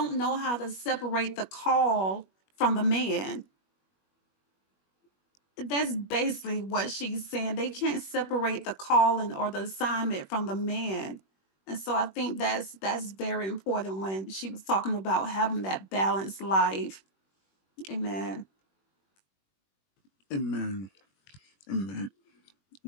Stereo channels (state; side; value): late; right; 21 ms